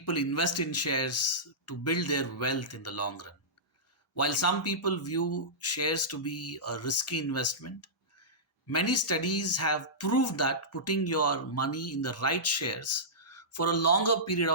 invest in shares to build their wealth in the long run. While some people view shares to be a risky investment, many studies have proved that putting your money in the right shares for a longer period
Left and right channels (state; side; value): normal; both; correlation -0.16